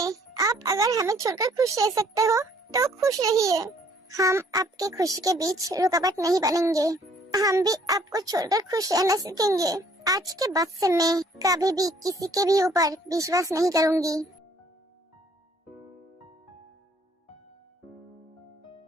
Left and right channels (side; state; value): both; normal; correlation 0.60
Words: आप अगर हमें छोड़कर खुश रह सकते हो तो खुश रहिए। हम आपके खुशी के बीच रुकावट नहीं बनेंगे। हम भी आपको छोड़कर खुश रहना सीखेंगे। आज के बाद से मैं कभी भी किसी के भी ऊपर विश्वास नहीं करूंगी।